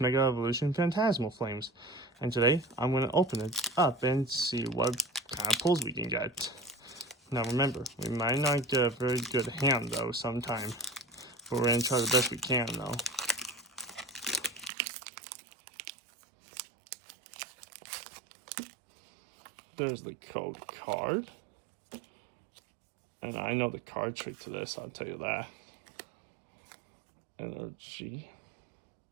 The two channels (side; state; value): left; drops out; at 14.7 s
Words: Evolution Phantasmal Flames. And today I'm going to open it up and see what kind of pulls we can get. Now remember, we might not get a very good hand though sometime. But we're going to try the best we can though. There's the code card. And I know the card trick to this, I'll tell you that. Energy.